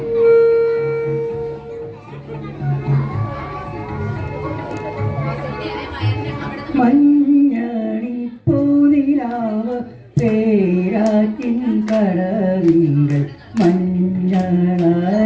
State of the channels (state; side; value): identical; both; correlation 1.00